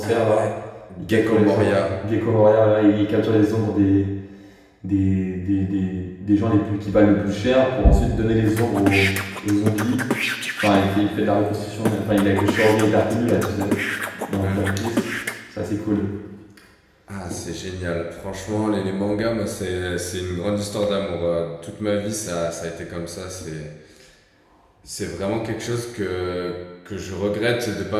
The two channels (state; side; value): identical; both; correlation 1.00